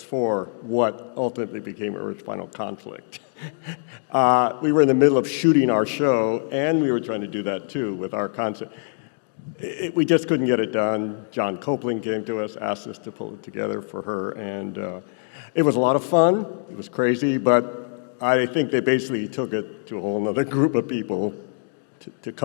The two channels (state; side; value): silent; right; digital silence